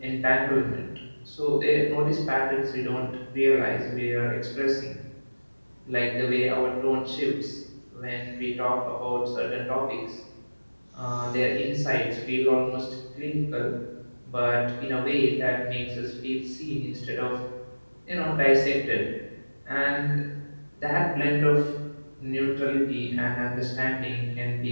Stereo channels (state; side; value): inverted; both; correlation -1.00